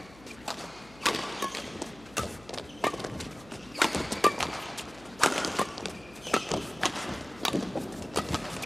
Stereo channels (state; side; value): noise; left; hum, 22 dB below the sound